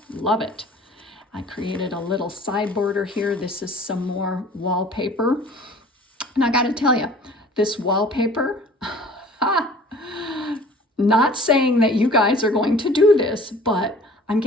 love it. I created a little side border here. This is some more wallpaper. And I got to tell you, this wallpaper, not saying that you guys are going to do this, but I'm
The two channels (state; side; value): normal; both; correlation 0.48